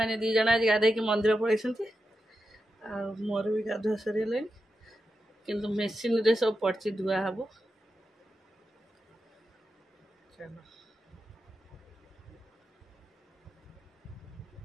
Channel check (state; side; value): normal; both; correlation 0.89